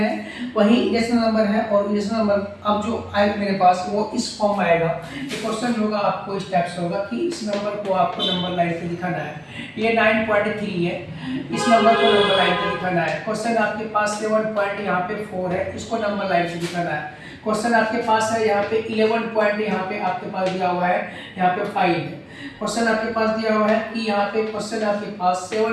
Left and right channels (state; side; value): identical; both; correlation 1.00